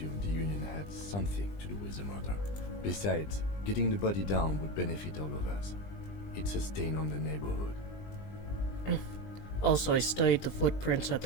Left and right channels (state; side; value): late; right; 20 ms